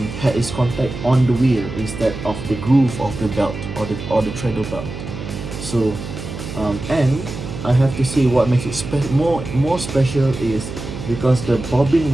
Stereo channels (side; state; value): right; noise; hum, 9 dB below the sound